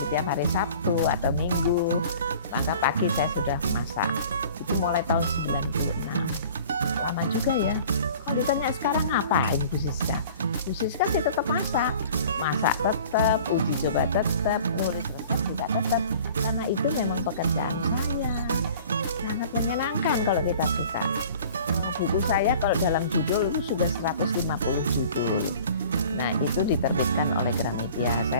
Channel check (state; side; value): inverted; both; correlation -0.47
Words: tiap hari Sabtu atau Minggu, maka pagi saya sudah masak. Itu mulai tahun 96. Lama juga ya. Kalau ditanya sekarang ngapain Bu Siska? Bu Siska sih tetap masak. Masak tetap, uji coba tetap, nulis resep juga tetap. Karena itu memang pekerjaan saya. Sangat menyenangkan kalau kita suka. Buku saya kalau dalam judul itu sudah 150 judul. Nah, itu diterbitkan oleh Gramedia.